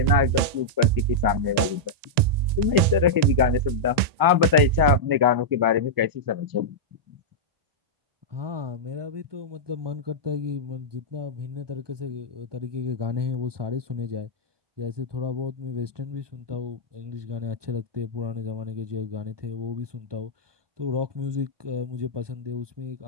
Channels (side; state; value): left; late; 1.9 ms